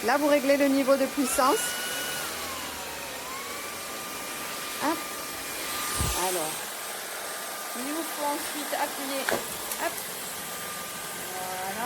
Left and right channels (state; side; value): identical; both; correlation 1.00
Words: Là, vous réglez le niveau de puissance. Hop. Alors, il vous faut ensuite appuyer. Hop.